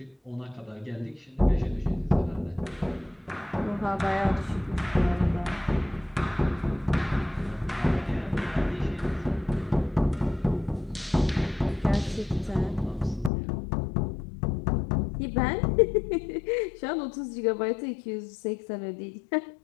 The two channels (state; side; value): drops out; right; at 13.3 s